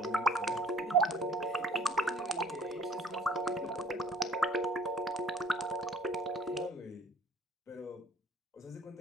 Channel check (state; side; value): normal; both; correlation 0.53